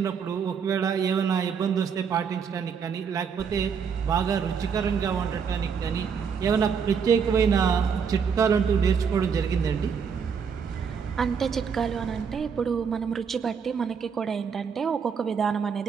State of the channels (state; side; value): quieter; left; 6.6 dB